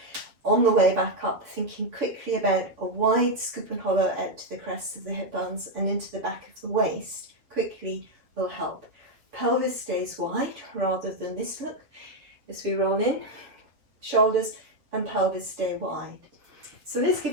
On the way back up, thinking quickly about a wide scoop and hollow out to the crests of the hip bones and into the back of the waist, quickly will help. Pelvis stays wide rather than this look as we roll in. Shoulders and pelvis stay wide. So let's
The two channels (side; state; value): left; late; 7.3 ms